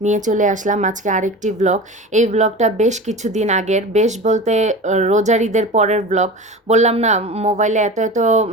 নিয়ে চলে আসলাম আজকে আরেকটি ব্লগ। এই ব্লগটা বেশ কিছুদিন আগের, বেশ বলতে রোজার ঈদের পরের ব্লগ। বললাম না, মোবাইলে এত এত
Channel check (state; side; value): normal; both; correlation 0.32